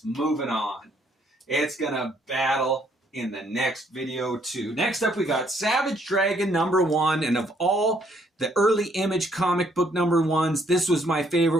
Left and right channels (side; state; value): both; normal; correlation 0.68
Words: moving on. It's going to battle in the next video, too. Next up, we got Savage Dragon number 1. And of all the early Image comic book number 1s, this was my